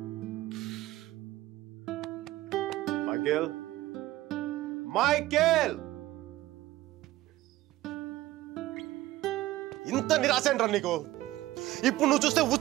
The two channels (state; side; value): quieter; left; 16.4 dB